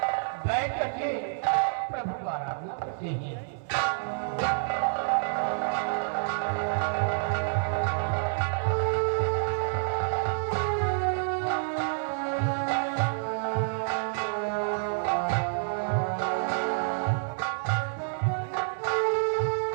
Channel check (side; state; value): left; silent; digital silence